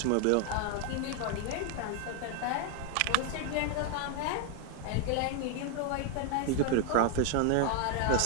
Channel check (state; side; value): different; both; correlation 0.01